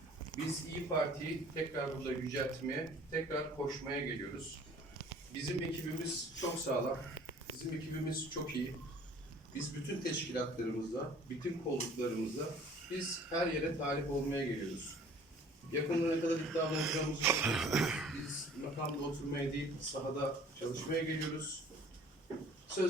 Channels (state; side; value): normal; both; correlation 0.51